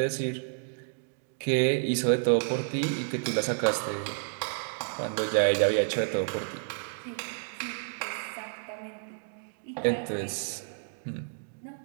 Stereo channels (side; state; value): left; silent; digital silence